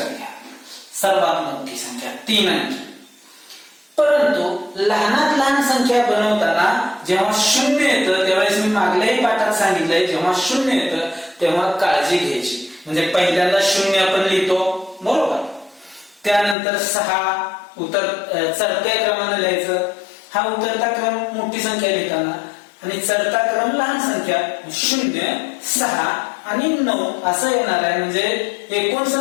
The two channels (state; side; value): drops out; right; at 16.6 s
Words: घ्या, सर्वात मोठी संख्या 3 अंकी. परंतु लहानात लहान संख्या बनवताना जेव्हा 0 येतं, त्यावेळेस मी मागल्याही पाठात सांगितलंय, जेव्हा 0 येतं तेव्हा काळजी घ्यायची. म्हणजे पहिल्यांदा 0 आपण लिहितो, बरोबर. त्यानंतर 6 चढत्या क्रमाने लिहायचं. हा उतरता क्रम मोठी संख्या लिहिताना आणि चढता क्रम लहान संख्या. 0, 6 आणि 9 असं येणार आहे, म्हणजे